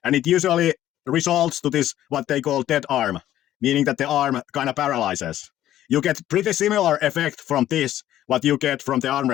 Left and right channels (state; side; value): quieter; right; 12.8 dB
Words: And it usually results to this, what they call dead arm, meaning that the arm kind of paralyzes. You get pretty similar effect from this, what you get from the arm